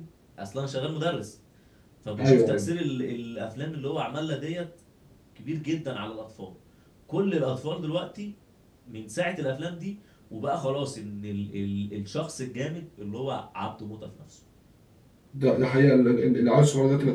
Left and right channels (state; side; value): identical; both; correlation 1.00